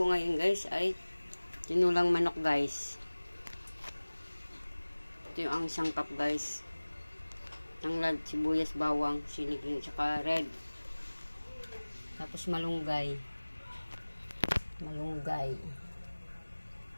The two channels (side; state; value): both; inverted; correlation -1.00